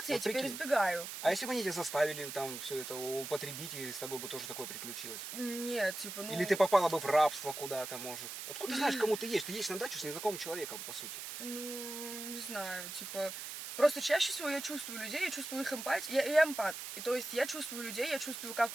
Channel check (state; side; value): noise; right; hiss, 8 dB below the sound